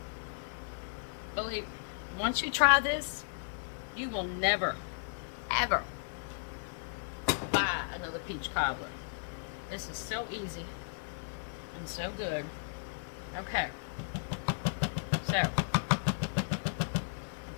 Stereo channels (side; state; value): right; silent; 54 dB below the other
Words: Believe me, once you try this, you will never, ever buy another peach cobbler. This is so easy and so good. Okay, so I've